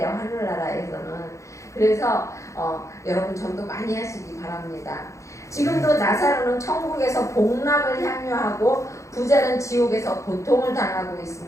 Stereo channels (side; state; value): right; late; 0.15 ms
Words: 하늘나라에서는. 그래서 여러분 전도 많이 하시기 바랍니다. 지금도 나사로는 천국에서 복락을 향유하고 부자는 지옥에서 고통을 당하고